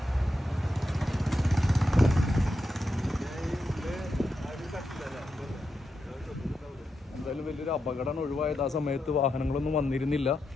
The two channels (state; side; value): normal; both; correlation 0.86